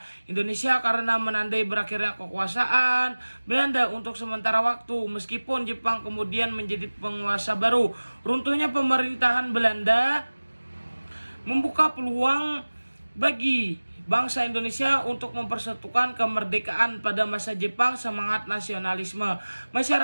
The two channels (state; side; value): inverted; both; correlation -1.00